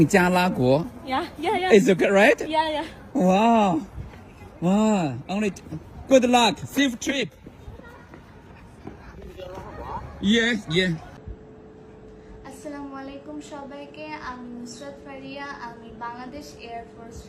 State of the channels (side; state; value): both; identical; correlation 1.00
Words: 加拉国. Yeah. Is it right? Yeah. Wow. Wow. Only good luck. Safe trip. Yeah. আসসালামু আলাইকুম সবাইকে। আমি নুসরাত ফারিয়া। আমি Bangladesh air force